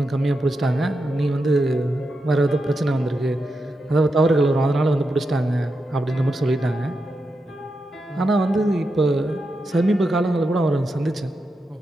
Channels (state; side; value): normal; both; correlation 0.87